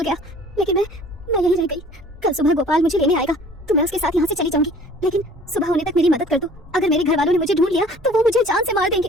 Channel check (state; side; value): normal; both; correlation 0.50